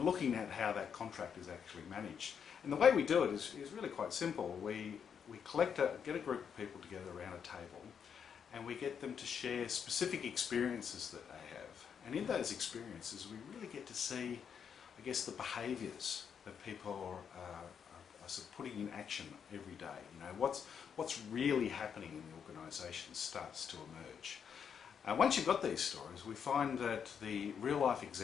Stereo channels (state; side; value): quieter; right; 7.3 dB